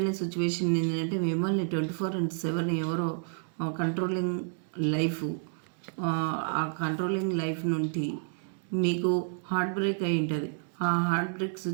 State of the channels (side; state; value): left; silent; digital silence